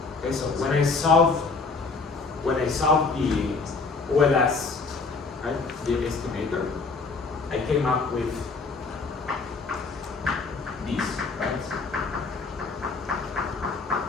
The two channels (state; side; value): quieter; right; 4.2 dB